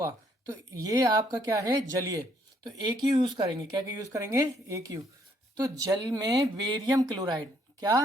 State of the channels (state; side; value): normal; both; correlation 0.68